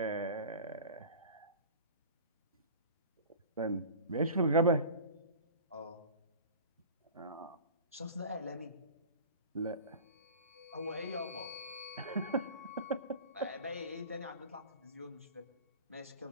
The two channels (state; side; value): inverted; both; correlation -0.37